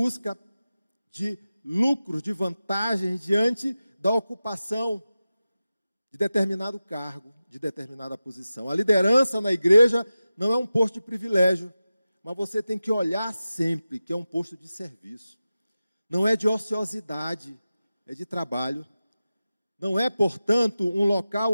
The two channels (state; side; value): inverted; both; correlation -0.94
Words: de lucros, de vantagens diante da ocupação de determinado cargo, de determinada posição. A liderança na igreja não é um posto de privilégio, mas você tem que olhar sempre que é um posto de serviço. Não é de ociosidade, é de trabalho. Não é, portanto, um local